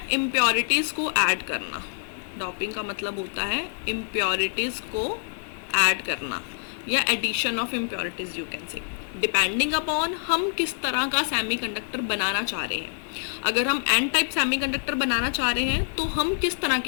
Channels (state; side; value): silent; right; 61 dB below the other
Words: इम्प्योरिटीज़ को ऐड करना. डॉपिंग का मतलब होता है इम्प्योरिटीज़ को ऐड करना या addition of impurities you can say, depending upon हम किस तरह का सेमीकंडक्टर बनाना चाह रहे हैं. अगर हम एन टाइप सेमीकंडक्टर बनाना चाह रहे हैं तो हम किस तरह